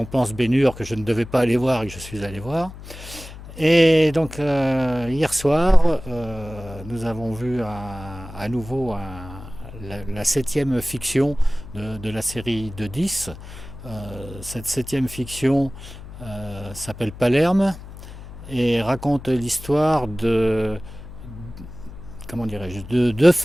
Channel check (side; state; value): left; noise; hum, 14 dB below the sound